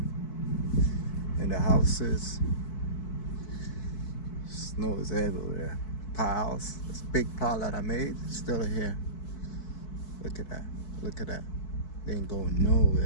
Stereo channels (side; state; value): right; late; 4.6 ms